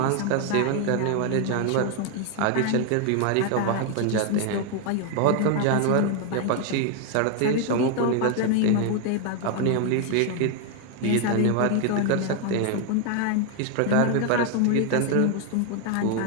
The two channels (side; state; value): both; different; correlation 0.01